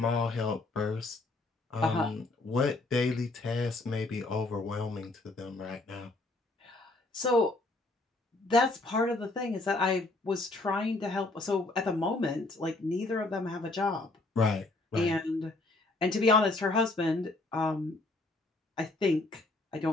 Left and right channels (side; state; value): right; quieter; 3.0 dB